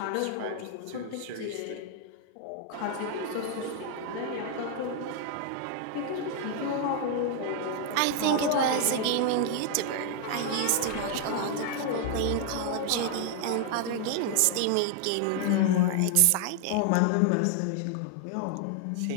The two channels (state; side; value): different; both; correlation 0.00